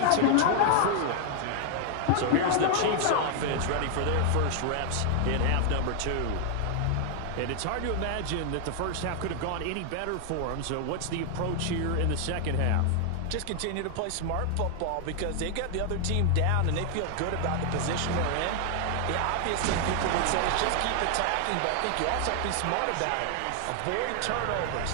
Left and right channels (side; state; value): both; different; correlation 0.00